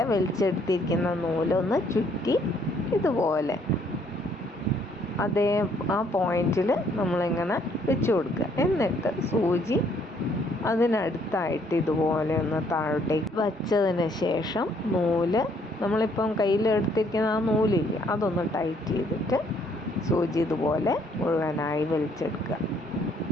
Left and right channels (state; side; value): normal; both; correlation 0.66